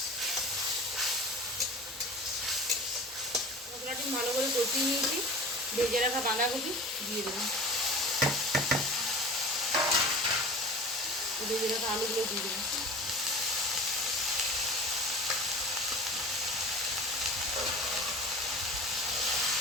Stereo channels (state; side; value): normal; both; correlation 0.37